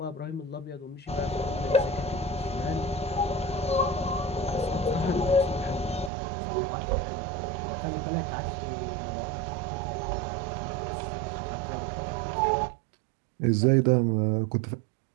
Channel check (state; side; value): drops out; left; at 6.1 s